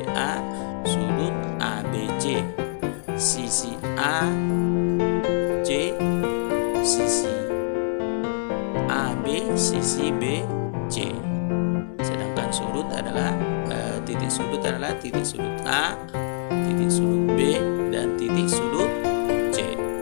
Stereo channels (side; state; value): right; silent; 62 dB below the other